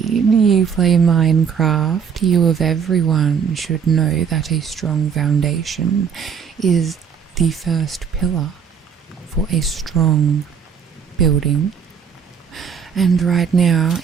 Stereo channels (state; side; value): quieter; left; 6.9 dB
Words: you play Minecraft. You of everyone should know that a strong foundation is the first pillar for a strong building. And right now